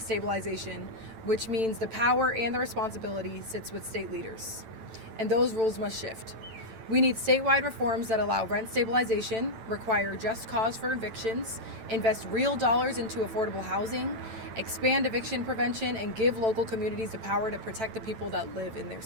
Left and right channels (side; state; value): left; late; 9.0 ms